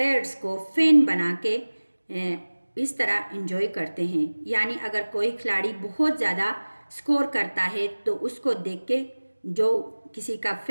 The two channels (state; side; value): inverted; both; correlation -1.00